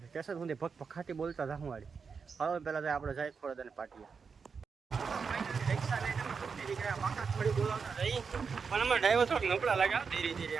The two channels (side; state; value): left; quieter; 5.6 dB